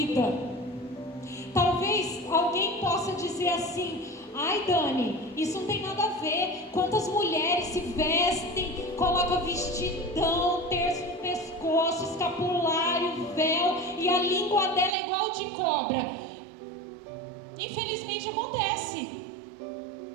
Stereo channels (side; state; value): left; drops out; at 15.0 s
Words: Talvez alguém possa dizer assim: ai Dani, isso não tem nada a ver. Quantas mulheres se vestem, colocam vestidão, terço no pescoço, escapulário, véu, e a língua dela é igual de cobra. Infelizmente acontece.